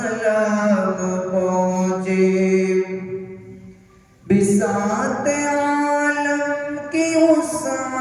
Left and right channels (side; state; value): both; identical; correlation 1.00